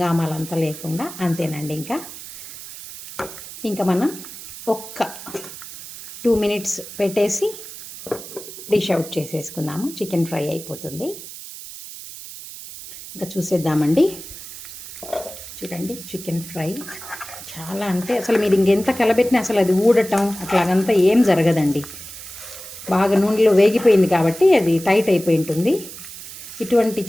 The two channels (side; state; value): right; noise; hiss, 13 dB below the sound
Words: లేకుండా. అంతేనండి. ఇంకా మనం ఒక్క 2 మినిట్స్ పెట్టేసి డిష్ అవుట్ చేసేసుకుందాము. చికెన్ ఫ్రై అయిపోతుంది. ఇంకా చూసేద్దామండి. చూడండి, చికెన్ ఫ్రై చాలా అంటే అసలు మీరు ఇంకెంత కలబెట్టినా అసలు అది ఊడటం అట్లాగంతా ఏం జరగదండి. బాగా నూనెలో వేగిపోయింది కాబట్టి అది టైట్ అయిపోయి ఉంటుంది. ఇటువంటి